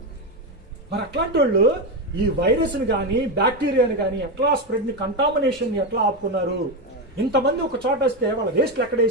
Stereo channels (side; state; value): both; normal; correlation 0.11